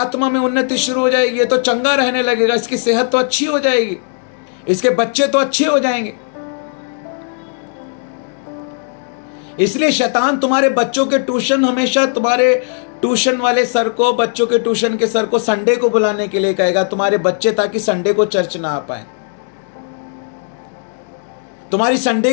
में उन्नति शुरू हो जाएगी, ये तो चंगा रहने लगेगा, इसकी सेहत तो अच्छी हो जाएगी, इसके बच्चे तो अच्छे हो जाएंगे। इसलिए शैतान तुम्हारे बच्चों के ट्यूशन, हमेशा तुम्हारे ट्यूशन वाले सर को, बच्चों के ट्यूशन के सर को संडे को बुलाने के लिए कहेगा तुम्हारे बच्चे, ताकि संडे को चर्च ना आ पाए। तुम्हारी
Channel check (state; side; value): silent; right; 65 dB below the other